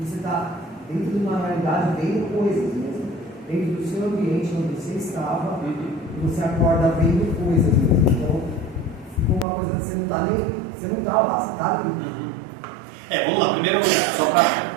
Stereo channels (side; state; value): left; drops out; at 9.5 s